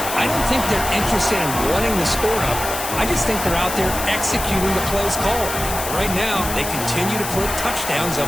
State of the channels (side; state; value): left; noise; hiss, 6 dB below the sound